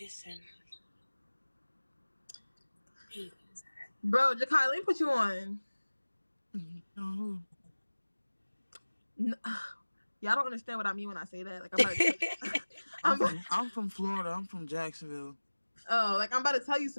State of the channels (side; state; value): both; inverted; correlation -1.00